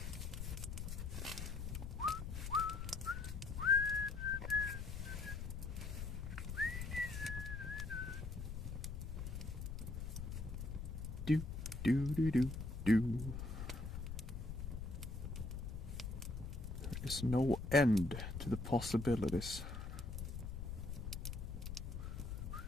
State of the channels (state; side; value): noise; left; rumble, 5 dB below the sound